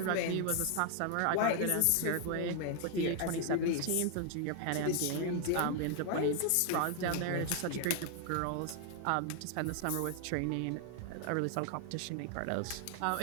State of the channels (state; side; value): different; both; correlation 0.00